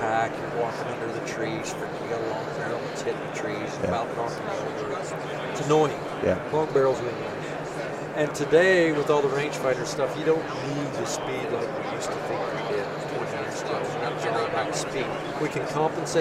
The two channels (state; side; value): identical; both; correlation 1.00